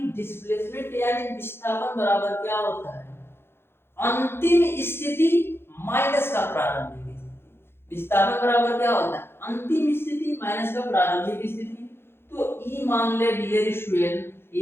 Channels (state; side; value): late; right; 0.11 ms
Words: डिस्प्लेसमेंट यानी विस्थापन बराबर क्या होता है अंतिम स्थिति माइनस का प्रारंभिक स्थिति। विस्थापन बराबर क्या होता है अंतिम स्थिति माइनस का प्रारंभिक स्थिति। तो ई मान ले डियर स्टूडेंट